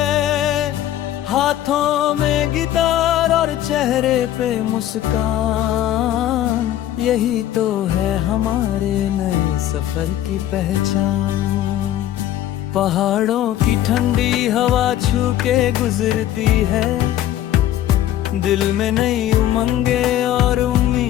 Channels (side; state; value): right; quieter; 12.5 dB